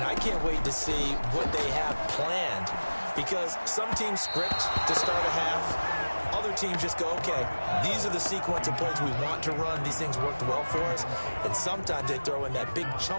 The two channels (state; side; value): inverted; both; correlation -1.00